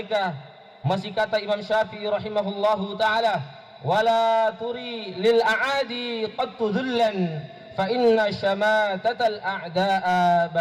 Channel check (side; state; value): both; identical; correlation 1.00